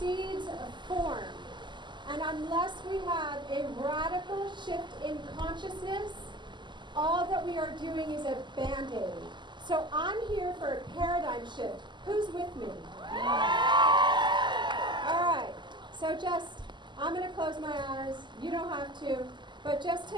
a form. And unless we have a radical shift in consciousness, all that we are doing is a Band-Aid. So I'm here for a paradigm shift. Who's with me? All right. So I'm going to close my eyes. You don't have to. But just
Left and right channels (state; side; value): late; left; 0.22 ms